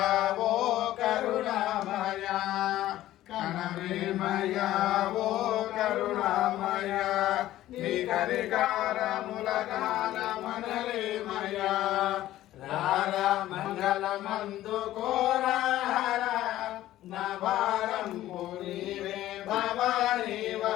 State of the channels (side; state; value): right; quieter; 14.3 dB